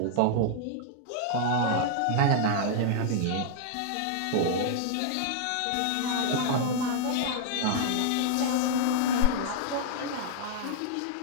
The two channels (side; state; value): both; different; correlation -0.01